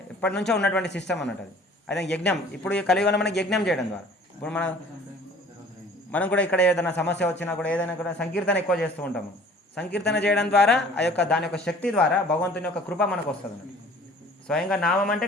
ఎప్పటి నుంచో ఉన్నటువంటి సిస్టమ్ అన్నట్టు అది. అదే యజ్ఞం. ఇప్పుడు ఈ కలియుగంలో మనకి యజ్ఞం చేయడం ద్వారా ఇప్పుడు మనం కూడా ఇక్కడ ఏదైనా సమస్య వచ్చినా కూడా ఏదైనా కూడా సంకీర్తన ఎక్కువ చేస్తూ ఉంటాము. సంకీర్తన చేయడం ద్వారా ఆ యొక్క దాని యొక్క శక్తి ద్వారా భగవంతుని యొక్క కృప మనకు వస్తుంది అన్నట్టు. స్వయంగా నామం అంటే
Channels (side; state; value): both; normal; correlation 0.50